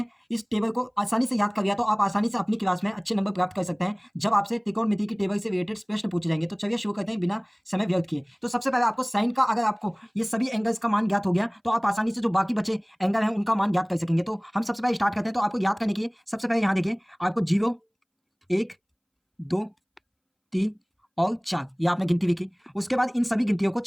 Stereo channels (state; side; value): identical; both; correlation 1.00